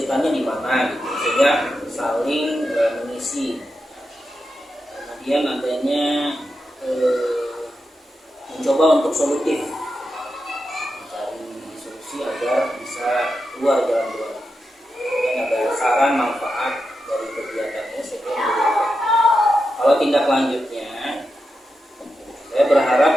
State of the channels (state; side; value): normal; both; correlation 0.88